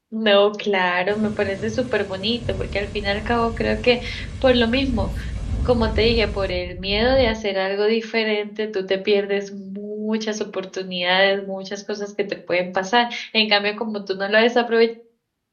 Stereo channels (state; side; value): identical; both; correlation 1.00